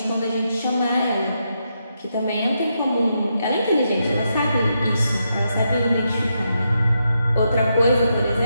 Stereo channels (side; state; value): both; inverted; correlation -0.82